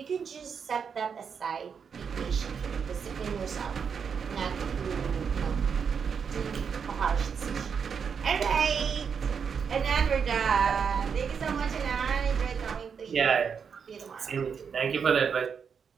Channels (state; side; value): quieter; left; 6.5 dB